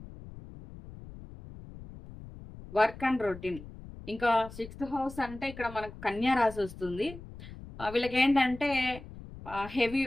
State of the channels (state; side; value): noise; left; rumble, 15 dB below the sound